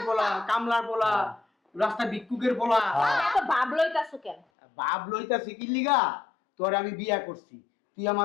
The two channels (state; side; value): drops out; right; at 4.4 s